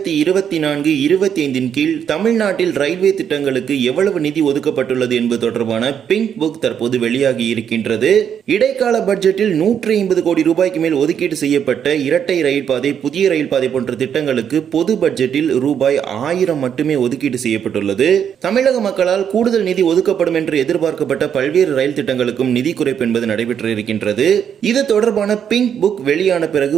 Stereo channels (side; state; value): left; quieter; 8.4 dB